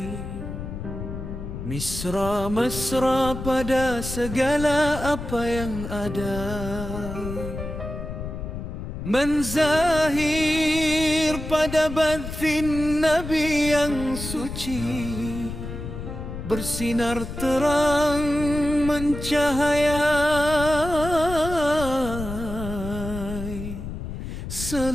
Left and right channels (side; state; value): left; noise; rumble, 7 dB below the sound